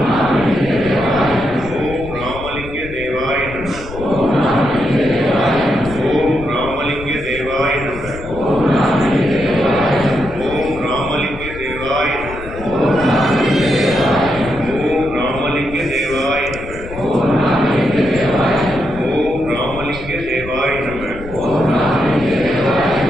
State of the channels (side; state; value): left; noise; rumble, 13 dB below the sound